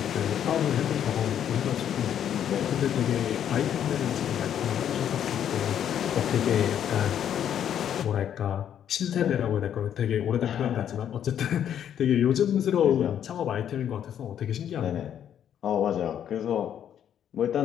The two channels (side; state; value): right; quieter; 9.6 dB